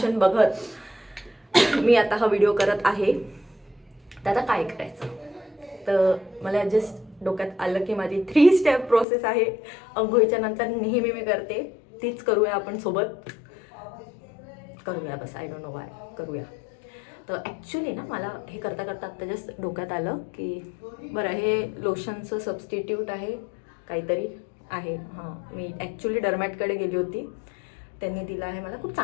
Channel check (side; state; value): right; drops out; at 9.1 s